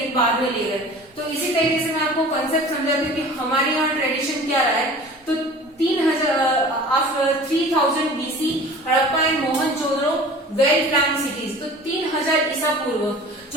बाद में ले गए। तो इसी तरीके से मैं आपको कंसेप्ट समझाती हूँ कि हमारे यहाँ ट्रेडिशन क्या रहा है। तो 3000 BC Harappa and Mohenjodaro well plan cities. तो 3000 ईसा पूर्व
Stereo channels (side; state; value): both; normal; correlation 0.42